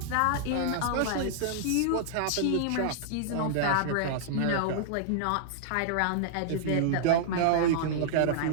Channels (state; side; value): different; both; correlation -0.01